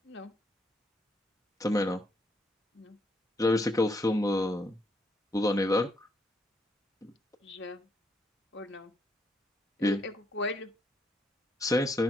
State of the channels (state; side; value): normal; both; correlation 0.74